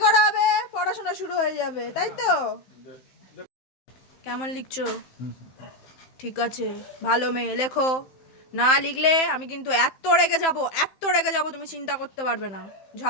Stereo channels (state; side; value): late; right; 15 ms